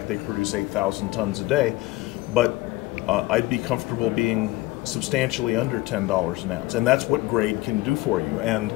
they produce 8,000 tons a day, but I'd be comfortable being substantially under $10 an ounce, and that's what grade can do for you. And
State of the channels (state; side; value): quieter; right; 19.1 dB